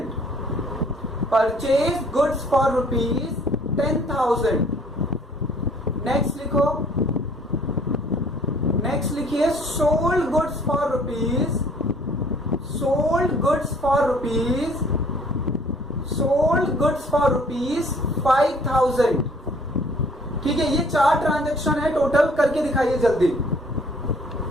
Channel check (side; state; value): both; normal; correlation 0.57